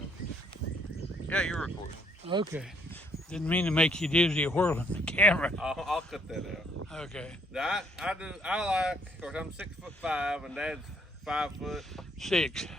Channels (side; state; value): both; normal; correlation 0.67